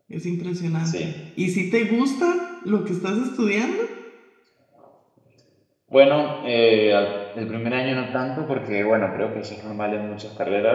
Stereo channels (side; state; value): both; identical; correlation 1.00